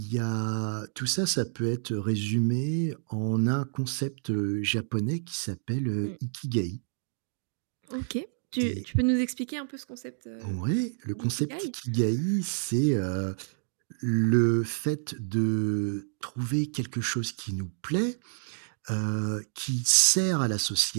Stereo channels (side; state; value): left; silent; digital silence